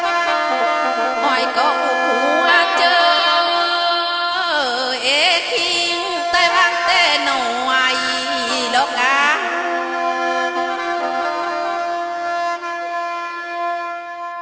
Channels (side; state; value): both; identical; correlation 1.00